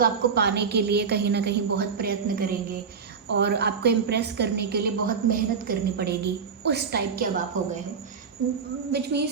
आपको पाने के लिए कहीं ना कहीं बहुत प्रयत्न करेंगे और आपको इम्प्रेस करने के लिए बहुत मेहनत करनी पड़ेगी। उस टाइप के अब आप हो गए हो, which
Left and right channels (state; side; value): quieter; left; 6.0 dB